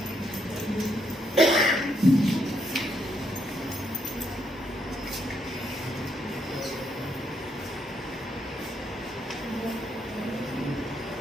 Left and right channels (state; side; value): normal; both; correlation 0.76